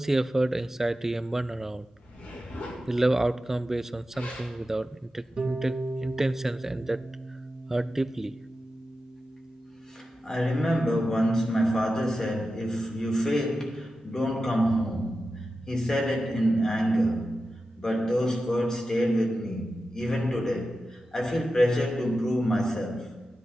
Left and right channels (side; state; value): both; normal; correlation 0.92